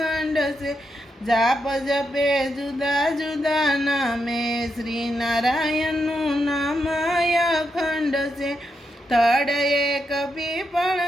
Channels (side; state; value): both; normal; correlation 0.83